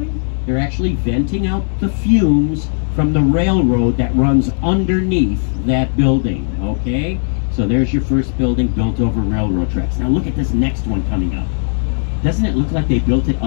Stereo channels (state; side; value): silent; right; 69 dB below the other